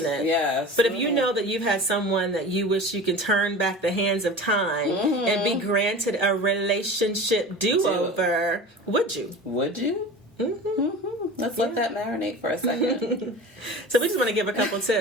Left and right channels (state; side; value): normal; both; correlation 0.35